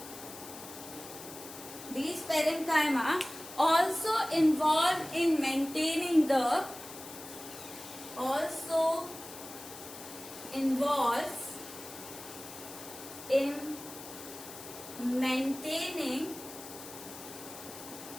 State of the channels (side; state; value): left; noise; hiss, 13 dB below the sound